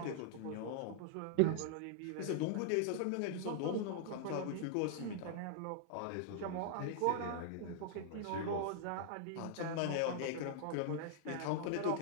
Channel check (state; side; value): different; both; correlation -0.01